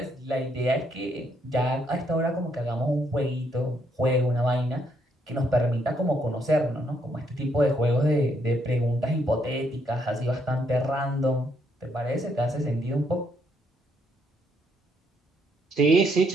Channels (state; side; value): normal; both; correlation 0.73